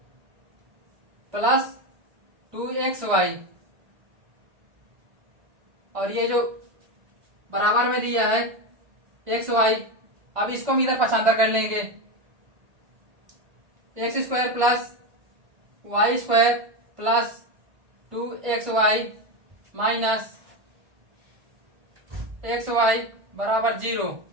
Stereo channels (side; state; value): left; late; 1.5 ms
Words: plus 2xy, और ये जो बराबर में दिया है एक्स वाई, अब इसको हम इधर पक्षांतर कर लेंगे, x square plus y square plus 2xy minus x y बराबर 0।